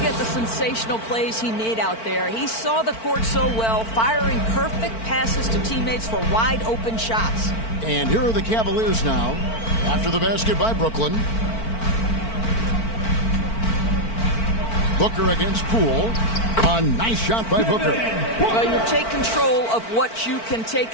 the sensational plays he made out there. He saw the court so well, firing perfect passes to teammates for wide open shots. And here are the Cavaliers now after the basket by Brooklyn. Booker against Poole. A nice shot by Booker. Well, you take control of what you can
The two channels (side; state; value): right; late; 4.5 ms